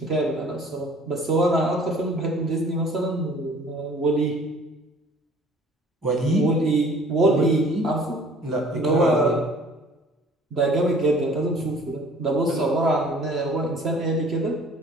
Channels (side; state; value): both; normal; correlation 0.52